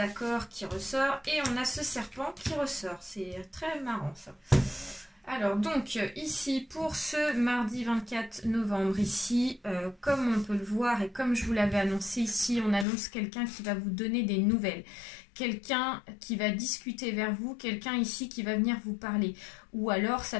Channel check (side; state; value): right; drops out; at 12.9 s